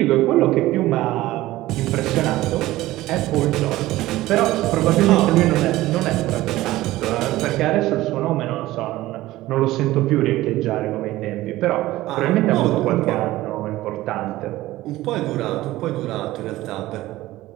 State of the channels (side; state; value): left; quieter; 16.8 dB